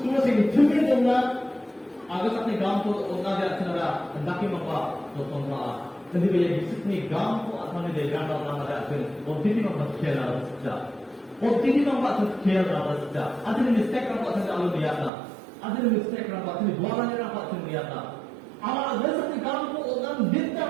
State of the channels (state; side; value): drops out; left; at 15.1 s